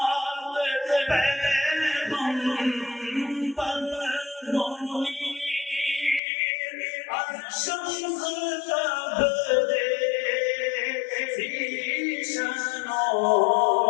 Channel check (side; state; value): right; drops out; at 6.2 s